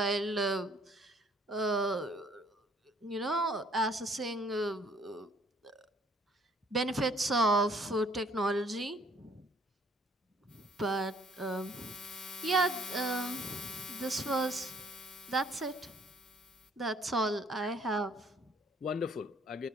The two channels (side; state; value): both; normal; correlation 0.61